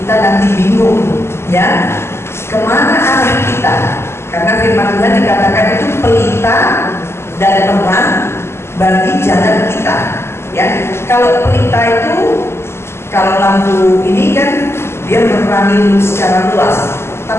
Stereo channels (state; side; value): late; right; 0.12 ms